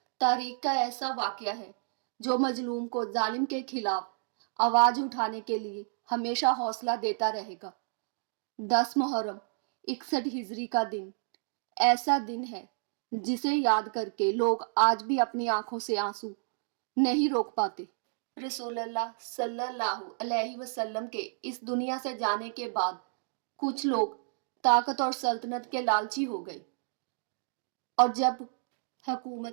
तारीख का ऐसा वाक़या है जो मजलूम को जालिम के खिलाफ आवाज़ उठाने के लिए हमेशा हौसला देता रहेगा। 10 मुहर्रम 61 हिजरी का दिन ऐसा दिन है जिसे याद करके लोग आज भी अपनी आंखों से आंसू नहीं रोक पाते। रसूलुल्लाह सल्लल्लाहु अलैहि वसल्लम के इस दुनिया से जाने के बाद कुछ लोग ताकत और सल्तनत के लालची हो गए और जब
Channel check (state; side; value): silent; left; digital silence